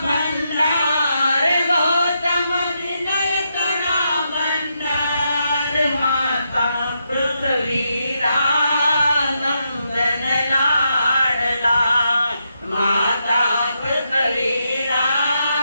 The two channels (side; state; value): both; inverted; correlation -0.82